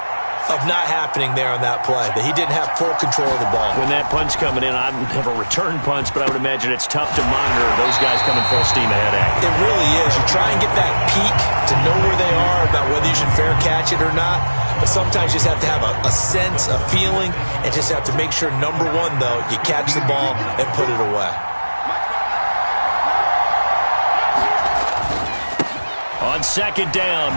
of not happening there on that play, that he didn't have full control of the ball. When that punch coming in, I've never returned punch, but I would imagine it's tough to monitor those guys coming full steam ahead at you. It really is. You try and get that peek to know where they are, about whether you should fair catch it or not. But sometimes you just have to have a sense, a feeling, and just have to make sure, number one, though, you catch the ball and put it away. On 2nd down,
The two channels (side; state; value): both; inverted; correlation -1.00